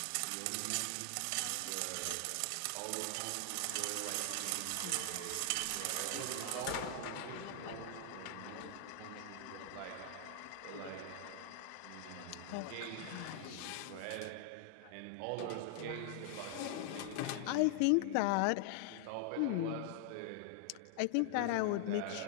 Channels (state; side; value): different; both; correlation -0.01